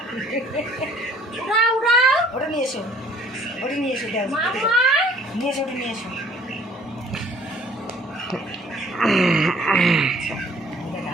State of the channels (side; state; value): both; normal; correlation 0.57